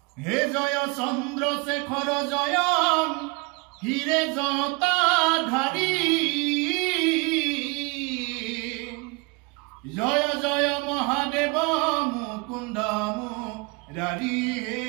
হে জয় চন্দ্ৰশেখৰ জয় হিৰে জটাধাৰী, জয় জয় মহাদেৱ মুকুন্দ মুৰাৰী, হে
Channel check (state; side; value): quieter; left; 28.5 dB